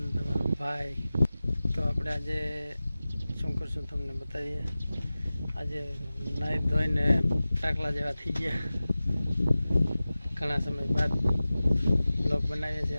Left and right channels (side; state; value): both; inverted; correlation -0.96